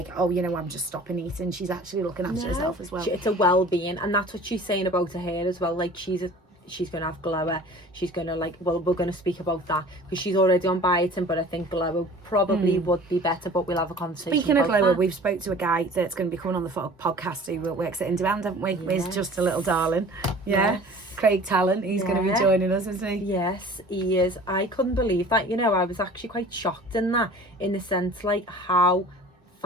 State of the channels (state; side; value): normal; both; correlation 0.45